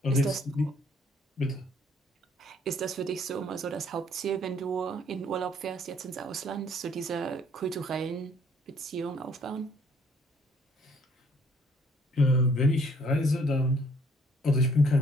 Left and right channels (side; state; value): both; normal; correlation 0.61